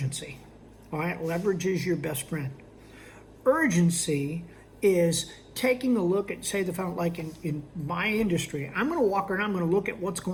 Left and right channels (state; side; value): identical; both; correlation 1.00